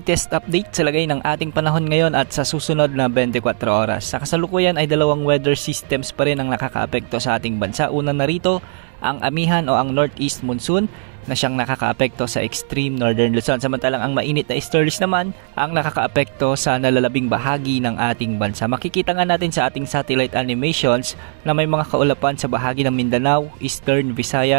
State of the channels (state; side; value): silent; left; 67 dB below the other